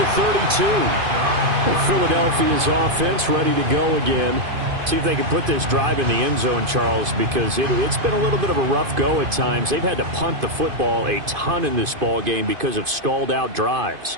32. Philadelphia's offense ready to go again. See if they can put this drive in the end zone, Charles, because it's been a little bit of a rough go at times. They've had to punt the football a ton in this ball game because of stalled-out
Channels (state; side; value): late; left; 2.5 ms